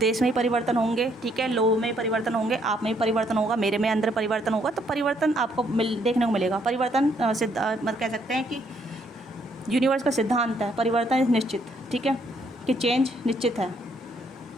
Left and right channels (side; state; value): both; normal; correlation 0.69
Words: में ही परिवर्तन होंगे, ठीक है। लोगों में परिवर्तन होंगे, आप में भी परिवर्तन होगा, मेरे में अंदर परिवर्तन होगा। तो परिवर्तन आपको देखने को मिलेगा। परिवर्तन मतलब कह सकते हैं कि यूनिवर्स का सिद्धांत है, परिवर्तन निश्चित, ठीक है, कि चेंज निश्चित है।